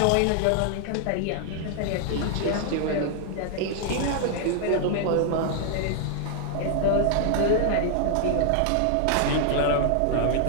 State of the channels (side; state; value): both; different; correlation 0.00